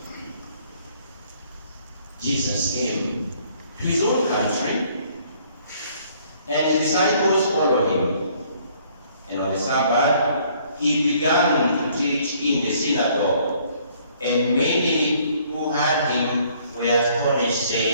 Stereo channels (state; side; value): inverted; both; correlation -0.62